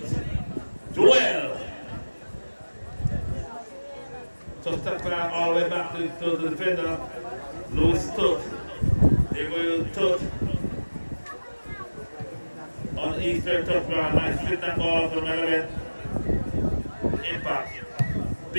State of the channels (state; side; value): inverted; both; correlation -1.00